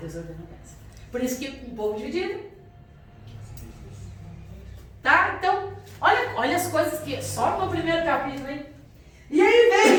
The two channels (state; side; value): identical; both; correlation 1.00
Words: Deus ordena a bênção. Por isso que um povo dividido. Tá? Então, olha olha as coisas que... Só no primeiro capítulo, hein? E